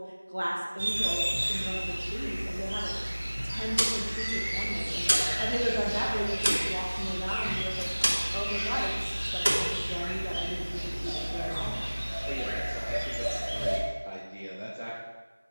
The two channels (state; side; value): inverted; both; correlation -1.00